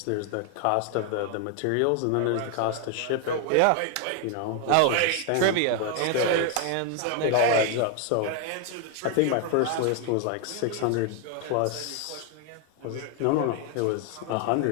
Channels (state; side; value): different; both; correlation 0.00